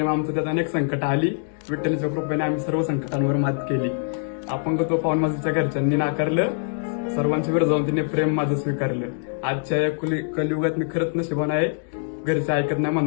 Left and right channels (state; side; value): silent; right; 63 dB below the other